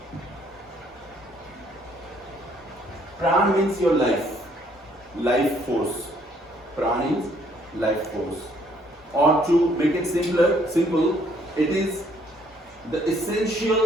Pran means your life force. Pran is life force. Or to make it simple, it is the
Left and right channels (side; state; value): both; normal; correlation 0.65